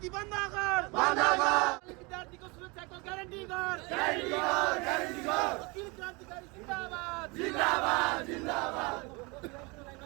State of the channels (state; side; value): quieter; left; 27.5 dB